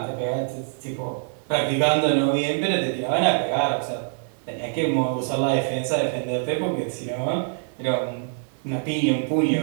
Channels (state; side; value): silent; left; 57 dB below the other